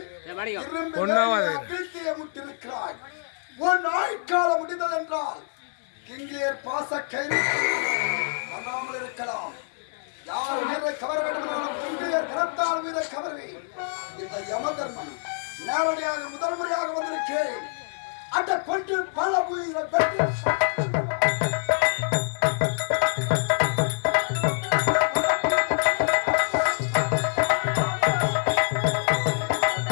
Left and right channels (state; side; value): silent; right; digital silence